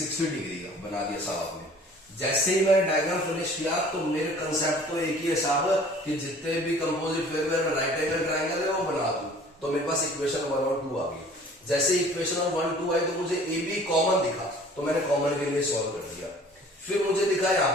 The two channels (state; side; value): normal; both; correlation 0.50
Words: डिग्री का बना दिया साहब आपने। जैसे ही मैंने डायग्राम फिनिश किया तो मेरे कंसेप्ट तो एक ही है साहब कि जितने भी कंपोजिट फिगर में राइट एंगल ट्रायंगल है वो बना दूं। तो मेरे पास इक्वेशन 1 और 2 आ गई। जैसे इक्वेशन 1 2 आई तो मुझे ए बी कॉमन दिखा, तो मैंने कॉमन के लिए सॉल्व कर दिया। फिर मुझे दिखा यहाँ